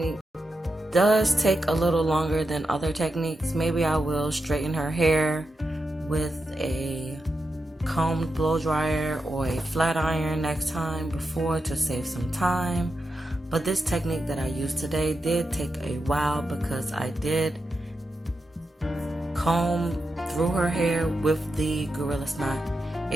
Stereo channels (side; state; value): both; normal; correlation 0.88